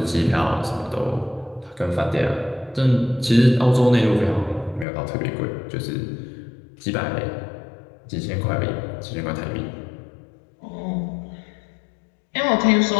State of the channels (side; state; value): right; drops out; at 4.9 s